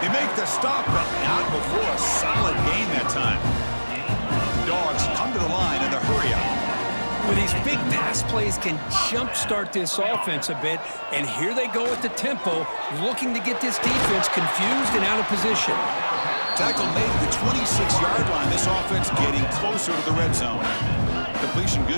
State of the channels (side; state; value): both; inverted; correlation -1.00